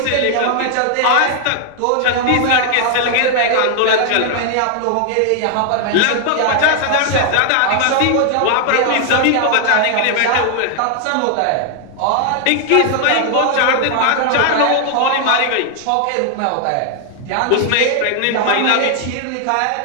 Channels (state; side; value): different; both; correlation 0.00